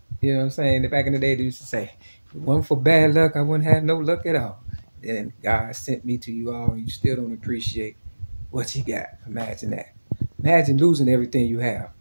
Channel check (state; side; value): inverted; both; correlation -1.00